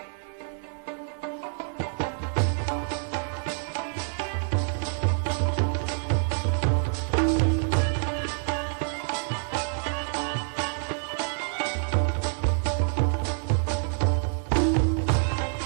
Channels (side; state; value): left; silent; 60 dB below the other